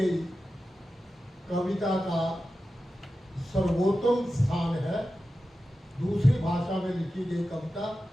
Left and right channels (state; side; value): normal; both; correlation 0.93